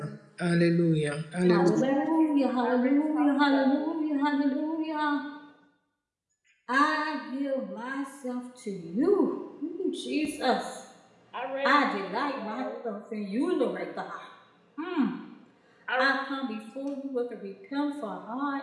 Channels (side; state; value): both; identical; correlation 1.00